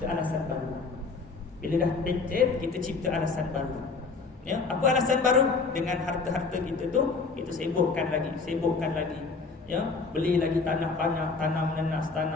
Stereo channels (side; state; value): right; quieter; 4.3 dB